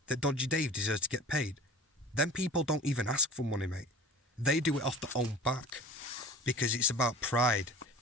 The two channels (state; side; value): normal; both; correlation 0.40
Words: that Dodgy Dave deserves to get paid? Them people don't even ask for money, mate. They do it off their own back, because it's about pride.